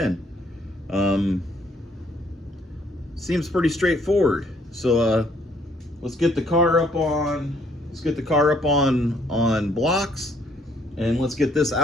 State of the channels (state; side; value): normal; both; correlation 0.65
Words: Seems pretty straightforward. So let's get the car up on. Let's get the car up on blocks, and let's get this